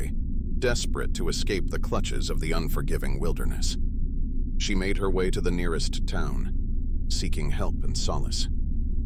desperate to escape the clutches of the unforgiving wilderness. She made her way to the nearest town, seeking help and solace.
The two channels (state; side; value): identical; both; correlation 1.00